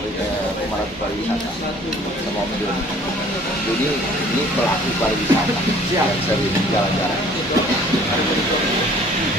pemerhati pariwisata sama Om Joni. Jadi ini pelaku pariwisata yang sering jalan-jalan.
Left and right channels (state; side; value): normal; both; correlation 0.53